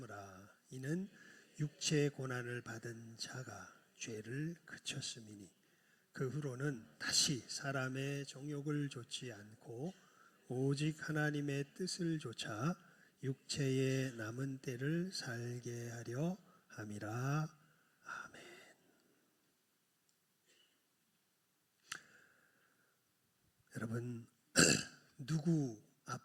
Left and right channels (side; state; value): both; identical; correlation 1.00